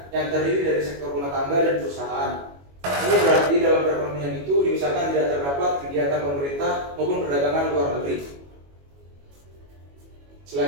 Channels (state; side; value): late; left; 21 ms